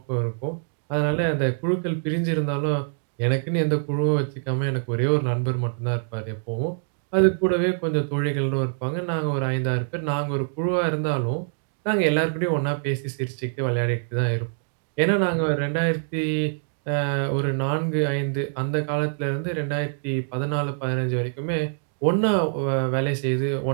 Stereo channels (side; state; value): left; silent; digital silence